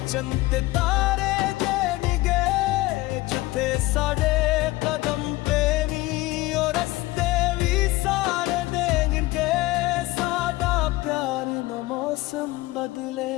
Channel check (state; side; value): quieter; right; 19.4 dB